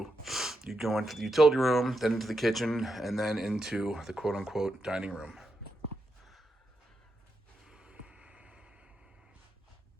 you go into the utility room, then into the kitchen, and then into the quote-unquote dining room.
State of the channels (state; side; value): normal; both; correlation 0.85